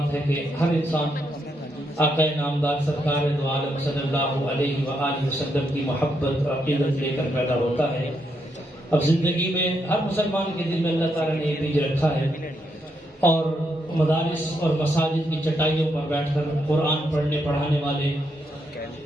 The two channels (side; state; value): both; normal; correlation 0.79